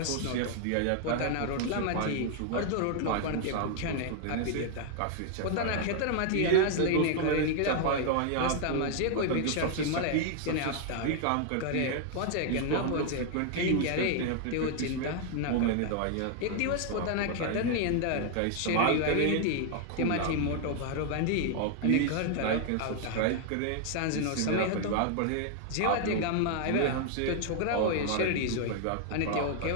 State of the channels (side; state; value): both; different; correlation 0.00